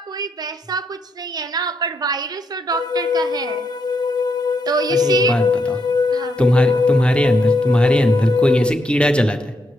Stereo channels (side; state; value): both; normal; correlation 0.79